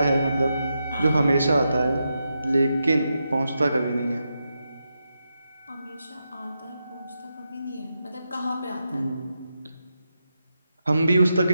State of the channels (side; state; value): both; inverted; correlation -0.86